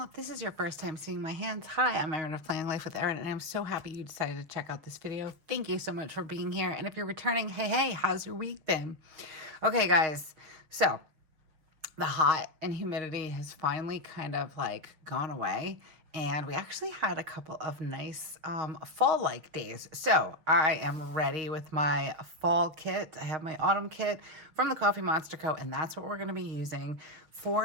If this is your first time seeing my hands, hi, I'm Erin of Planning Life with Erin, and I'm so happy you decided to check out this video. Thank you so much for being here. And if you're returning, hey, how's your week been? Okay, guys, so the hot and humidity has finally kind of like gone away. And we actually had a couple of nice fall-like days. So I am ready with my fall kit. I have my autumn kit from TheCoffeeMonsterzco, and that's what we're going to be using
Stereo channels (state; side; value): late; left; 6.4 ms